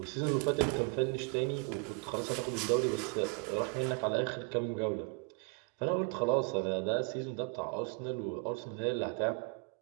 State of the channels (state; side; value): quieter; left; 35.8 dB